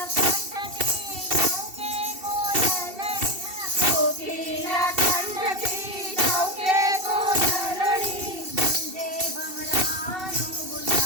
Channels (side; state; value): left; late; 2.7 ms